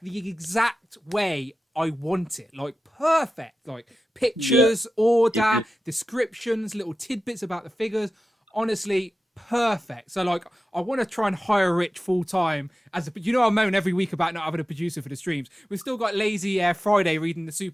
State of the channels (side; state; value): both; normal; correlation 0.93